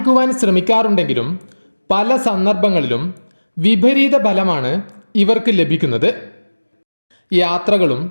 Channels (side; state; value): both; inverted; correlation -1.00